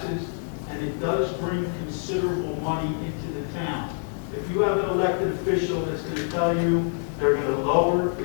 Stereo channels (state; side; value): silent; right; 60 dB below the other